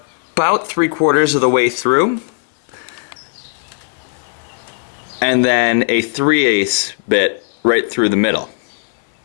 3/4 of the way through, and then a 3/8 bit right through the middle.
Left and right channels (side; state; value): right; silent; 67 dB below the other